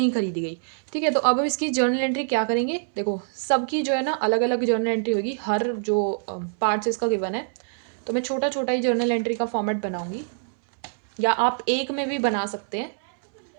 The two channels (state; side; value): silent; left; 62 dB below the other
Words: खरीदी गई। ठीक है, तो अब हम इसकी जर्नल एंट्री क्या करेंगे। देखो सबकी जो है ना अलग अलग जर्नल एंट्री होगी, हर जो पार्ट्स इसका गिवन है, तो मैं छोटा छोटा ही जर्नल एंट्री का फॉर्मेट बनाऊंगी, या आप एक में भी बना सकते हैं।